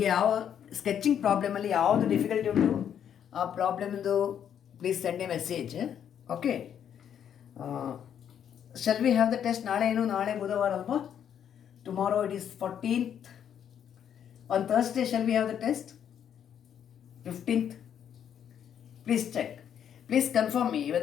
ಯಾವ sketching ಪ್ರಾಬ್ಲಮಲ್ಲಿ ಯಾವುದು difficulty ಉಂಟು ಆ ಪ್ರಾಬ್ಲಮ್ದು please send a message. Okay, shall we have the test? ನಾಳೆ ಬುಧವಾರ ಅಲ್ವಾ? Tomorrow it is 14th. On Thursday shall we have the test? 15th. Please check. Please confirm me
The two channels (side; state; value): right; quieter; 9.0 dB